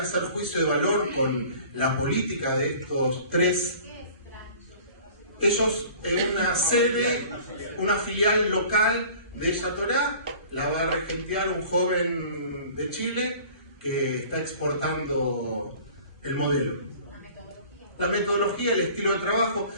juicio de valor con la política de estos tres, ellos en una sede, una filial local de Ella Torá, la va a regentear un joven de Chile que está exportando el modelo. La metodología, el estilo de trabajo.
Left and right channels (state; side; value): inverted; both; correlation -0.47